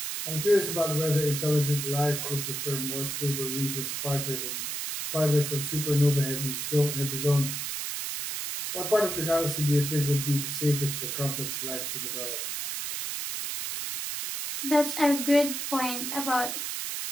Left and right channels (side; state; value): right; noise; hiss, 4 dB below the sound